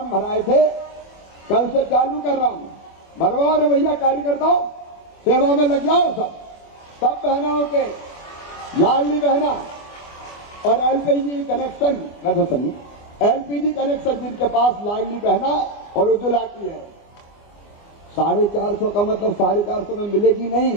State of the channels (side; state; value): right; late; 24 ms